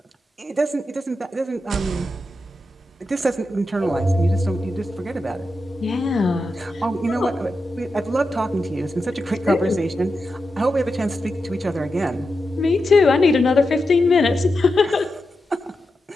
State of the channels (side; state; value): both; normal; correlation 0.89